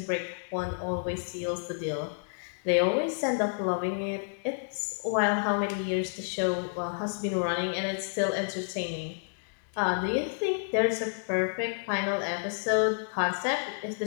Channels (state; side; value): silent; right; digital silence